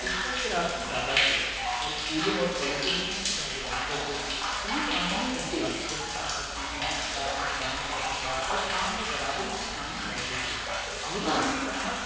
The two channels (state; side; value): identical; both; correlation 1.00